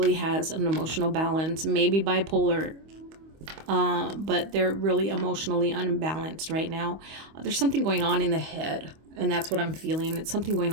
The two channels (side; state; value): left; late; 25 ms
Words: has an emotional balance, maybe bipolar, but they're really emotionally unbalanced right now. There's something going on in the head, and that's what I'm feeling. It's something going